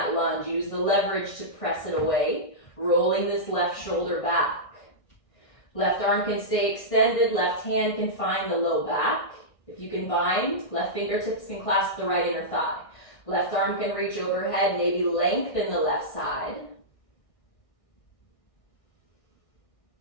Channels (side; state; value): right; late; 1.6 ms